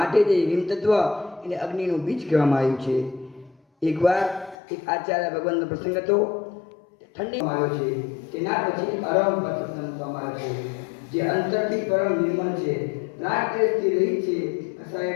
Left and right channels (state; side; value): drops out; right; at 4.5 s